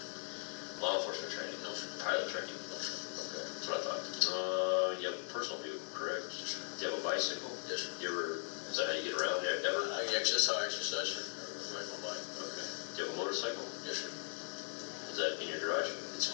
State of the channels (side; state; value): right; silent; 52 dB below the other